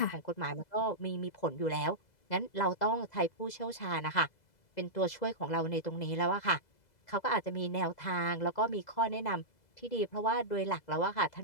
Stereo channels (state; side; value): late; right; 2.0 ms